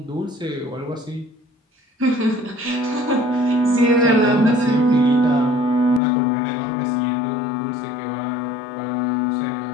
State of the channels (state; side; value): drops out; right; at 6.0 s